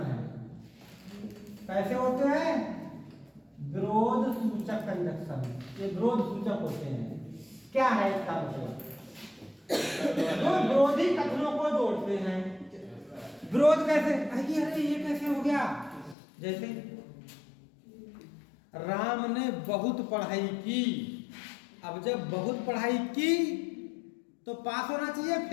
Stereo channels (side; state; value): right; drops out; at 16.2 s